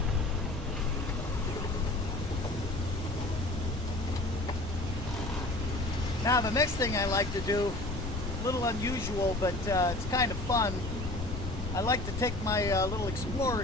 Now the next thing I like to do, a little unusual, but it's kind of fun. I like to take my little Explorer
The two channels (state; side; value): noise; left; rumble, 6 dB below the sound